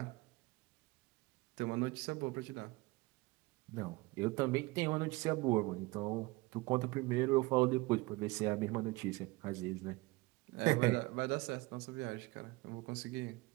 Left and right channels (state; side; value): quieter; left; 22.6 dB